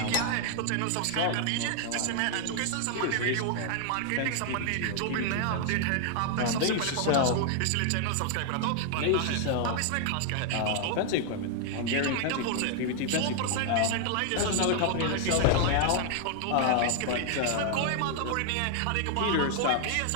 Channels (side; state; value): both; different; correlation 0.00